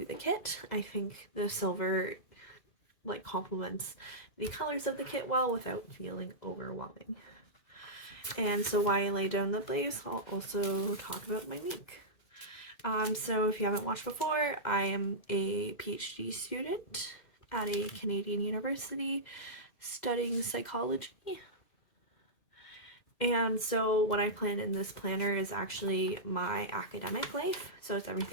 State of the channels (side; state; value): right; late; 2.0 ms